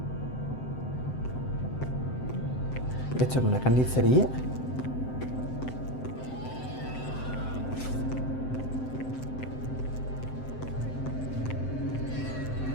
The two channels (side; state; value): right; late; 7.8 ms